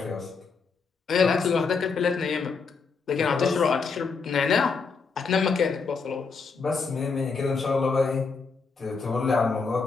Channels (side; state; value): right; quieter; 4.9 dB